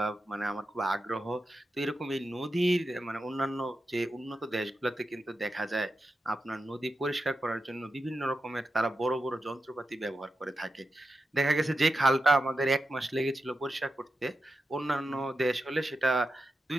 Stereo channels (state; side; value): normal; both; correlation 0.89